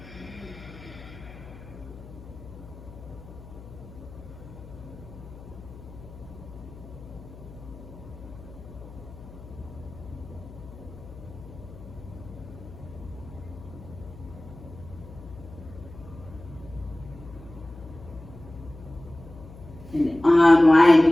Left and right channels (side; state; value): left; noise; hum, 16 dB below the sound